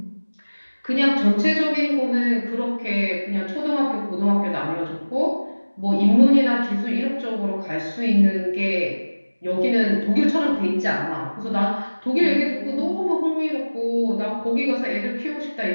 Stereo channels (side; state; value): both; inverted; correlation -1.00